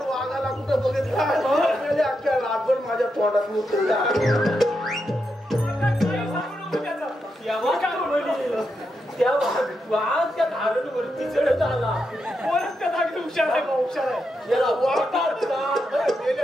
कुठं बघितला अख्ख्या रातभर माझ्या तोंडात मुतला. त्या वाघ त्या धारणवरती चढत आला. कोणच त्या जागी हुशार आहे हुशार आहे. याला वाघ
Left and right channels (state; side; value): normal; both; correlation 0.85